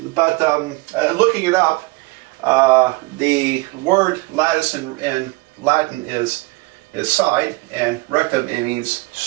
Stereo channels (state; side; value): quieter; left; 23.9 dB